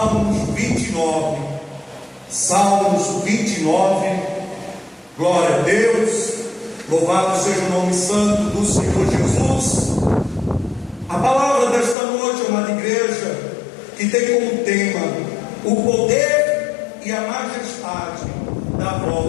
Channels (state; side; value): drops out; right; at 12.0 s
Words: 29. Salmos 29. Glória a Deus. Louvado seja o nome santo do Senhor Jesus. A palavra desta noite, amada igreja, que tem como tema o poder e a majestade da